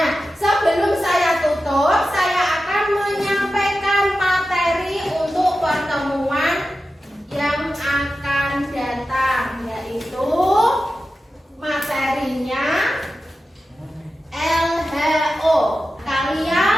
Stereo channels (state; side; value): normal; both; correlation 0.93